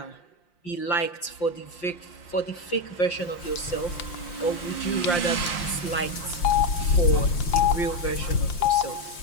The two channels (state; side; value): late; right; 5.7 ms